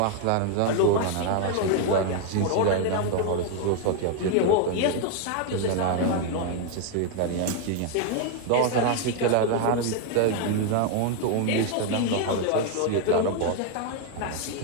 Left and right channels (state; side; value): different; both; correlation 0.01